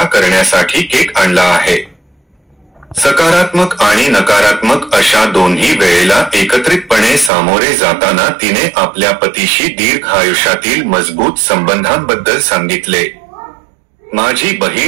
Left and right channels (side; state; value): left; drops out; at 7.3 s